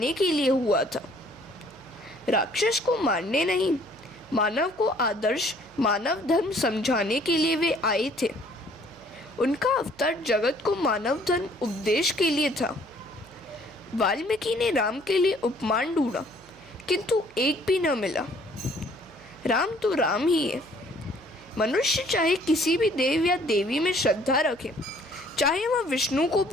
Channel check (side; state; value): right; noise; hum, 27 dB below the sound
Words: के लिए हुआ था। राक्षस को मारने नहीं, मानव को आदर्श मानव धर्म समझाने के लिए वे आए थे। उनका अवतार जगत को मानव धर्म उपदेश के लिए था। वाल्मीकि ने राम के लिए उपमान ढूंढा, किंतु एक भी न मिला। राम तो राम ही है। मनुष्य चाहे किसी भी देव या देवी में श्रद्धा रखे, चाहे वह विष्णु को